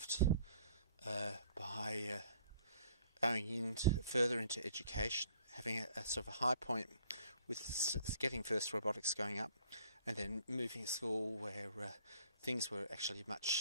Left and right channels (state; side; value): inverted; both; correlation -0.58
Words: by going further into education, having a sort of a high point with getting first robotics going up, and then moving to school where things were actually